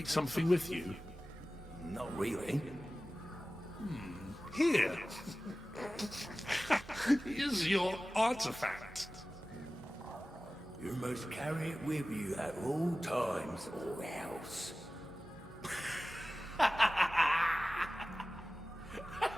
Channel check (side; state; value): both; normal; correlation 0.96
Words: something with you? Not really. Here. Here's your artifact. You must carry it with you at all times or else.